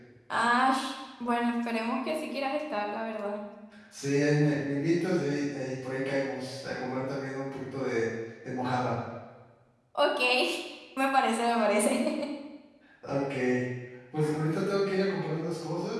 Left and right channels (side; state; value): both; identical; correlation 1.00